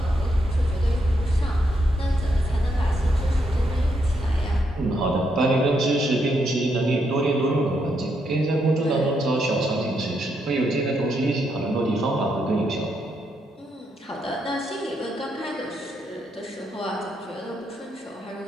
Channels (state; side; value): normal; both; correlation 0.78